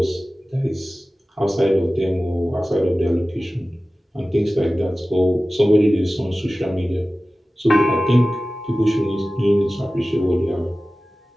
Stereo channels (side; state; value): both; normal; correlation 0.96